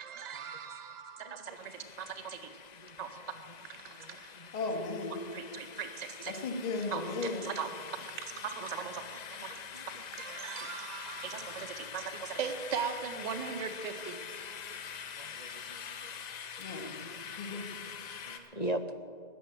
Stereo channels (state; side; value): late; right; 1.9 ms